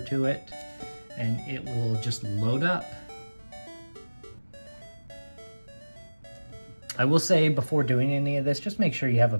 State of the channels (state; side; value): inverted; both; correlation -1.00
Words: it and it will just load up. I will say before doing any of this, just make sure you have a